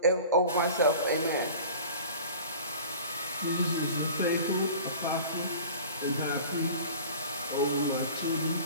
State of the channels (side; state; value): both; inverted; correlation -0.41